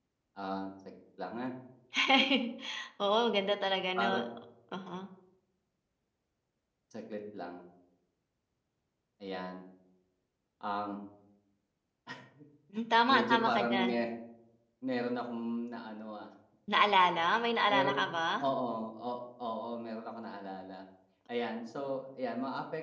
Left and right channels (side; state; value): both; identical; correlation 1.00